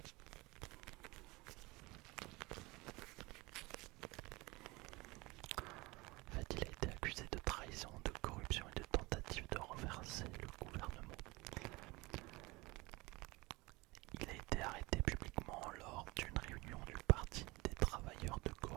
En fait, il a été accusé de trahison, de corruption et de tentative de renverser le gouvernement. Il a été arrêté publiquement lors d'une réunion du Parti des travailleurs de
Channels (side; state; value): left; quieter; 23.1 dB